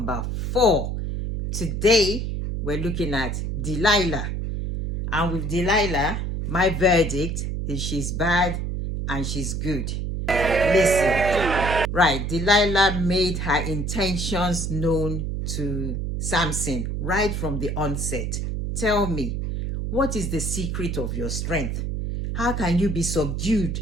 4. Today, we're looking at Delilah. And with Delilah, my verdict is she's bad and she's good. Listen. Right, Delilah made her intentions known to Samson right from the onset. Tell me, what is the secret of your strength? How can you be subdued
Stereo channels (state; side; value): noise; right; hum, 2 dB below the sound